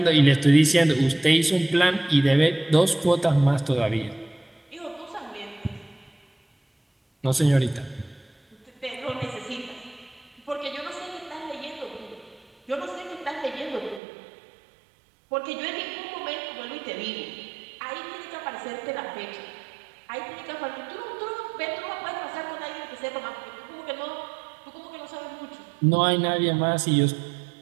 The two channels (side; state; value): left; drops out; at 14.0 s